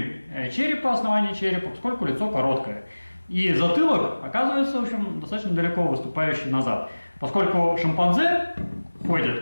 черепа, основания черепа, поскольку лицо короткое. И затылок оказывается, в общем, достаточно далеко выступающий назад. Поскольку шимпанзе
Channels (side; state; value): both; inverted; correlation -1.00